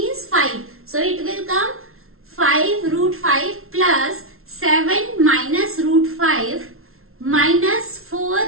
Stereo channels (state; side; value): late; left; 0.62 ms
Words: 5. So it will come 5 root 5 plus 7 minus root 5 minus